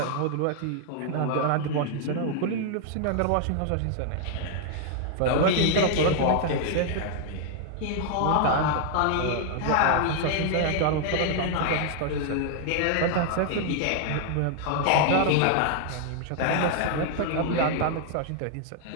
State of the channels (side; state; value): both; different; correlation 0.00